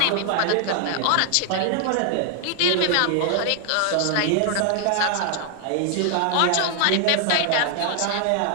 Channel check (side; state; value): both; different; correlation 0.00